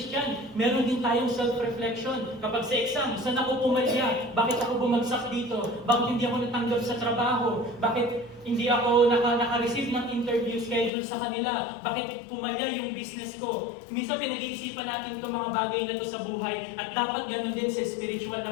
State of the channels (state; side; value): drops out; right; at 10.9 s